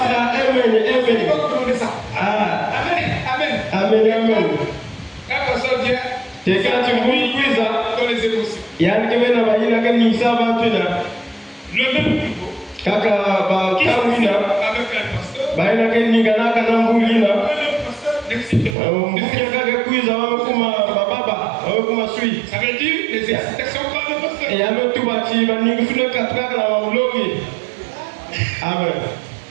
là, Amen. Amen. C'est quand tu bouilles ça. Il y a un qui vient là, il y a un qui ça va tout là. Le même niveau. Kaka ba kamina. Ba ina ke ningana kana mbulina. Mukaka kuiza wamekuma baba, wamekuma sui. Ça veut dire les excitations par le pasteur. Et ame tu bati ba ningusule katraka na wamulogi. Amen.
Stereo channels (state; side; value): drops out; left; at 18.8 s